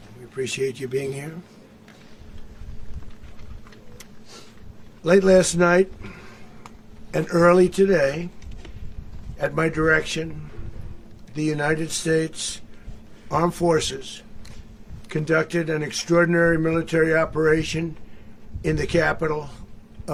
We appreciate you being here. Late last night and early today, at my direction, the United States Armed Forces conducted an extraordinary military operation in the capital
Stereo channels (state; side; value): identical; both; correlation 1.00